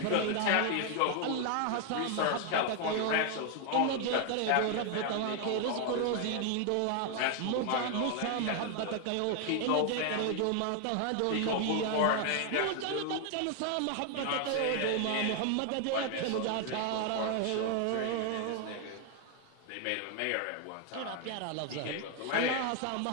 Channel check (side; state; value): both; different; correlation 0.00